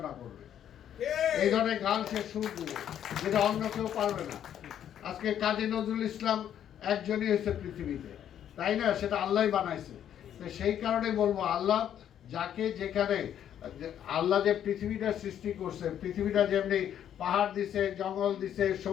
করবে, এই ধরনের গান সে সুর দিবে, যেটা অন্য কেউ পারবে না। আজকে কাজী নজরুল ইসলাম একজনই হয়েছে পৃথিবীতে, তাই না? সেটা আল্লাহ বানাইছে। তো সেই কারণে বলবো, আল্লাহ যাকে যেখানে, আল্লাহ যে পৃথিবীটা সৃষ্টি করছে, পৃথিবীটা যেমনি পাহাড় দিছে, জঙ্গল দিছে,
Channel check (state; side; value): quieter; right; 10.0 dB